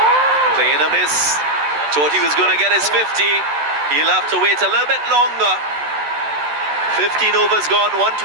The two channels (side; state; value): left; late; 14 ms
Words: Playing a miss. Thought he was going to get his 50. He'll have to wait a little bit longer. 15 overs gone,